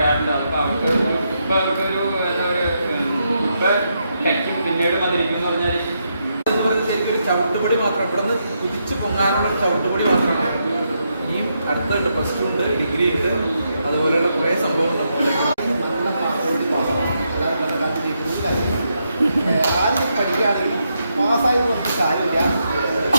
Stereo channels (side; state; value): both; inverted; correlation -0.81